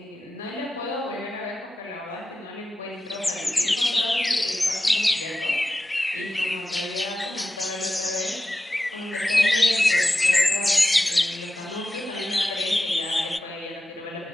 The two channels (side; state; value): both; normal; correlation 0.92